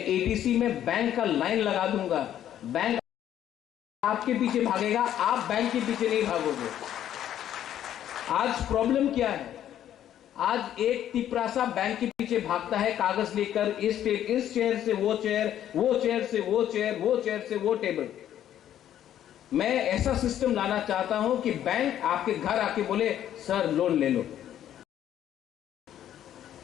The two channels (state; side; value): quieter; right; 11.0 dB